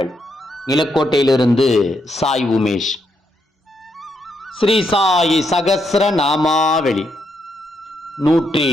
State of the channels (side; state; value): both; normal; correlation 0.79